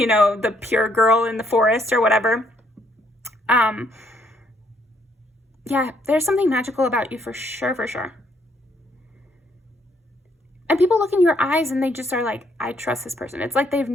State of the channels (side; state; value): both; normal; correlation 0.70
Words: know, the pure girl in the forest or whatever. Yeah, there's something magical about you for sure. And people look in your eyes and they just are like, I trust this person. It's like they've